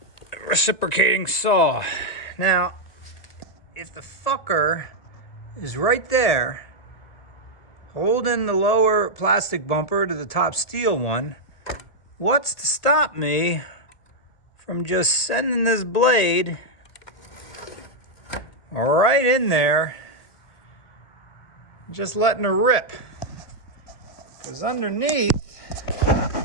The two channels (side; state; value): right; late; 1.3 ms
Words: reciprocating saw. Now, if the fucker is right there, holding the lower plastic bumper to the top steel one, what's to stop me from just sending this blade right in there, just letting her rip? Because underneath,